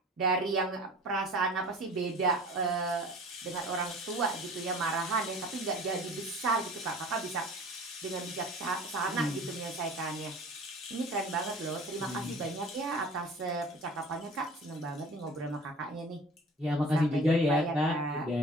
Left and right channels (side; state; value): both; normal; correlation 0.43